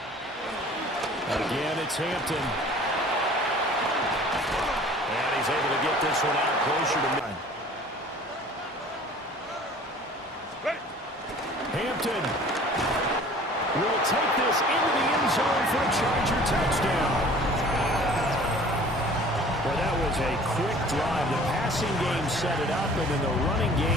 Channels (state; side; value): normal; both; correlation 0.48